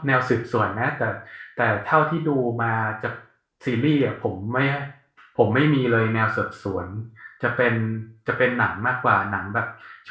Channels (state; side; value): identical; both; correlation 1.00